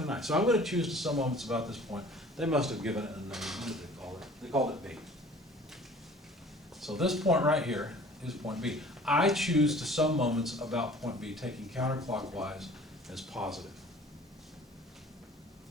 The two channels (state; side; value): normal; both; correlation 0.48